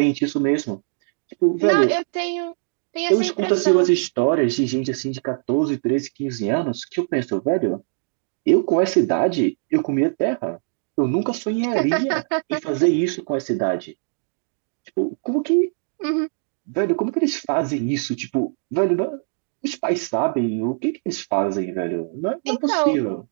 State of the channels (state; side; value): silent; left; digital silence